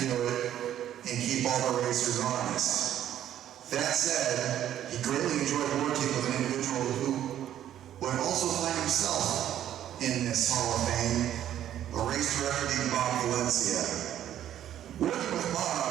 do it and keep all the racers honest. That said, he greatly enjoyed working with an individual who would also find himself in this Hall of Fame, a race director named Bob Valencia. Working with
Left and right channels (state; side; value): quieter; left; 11.3 dB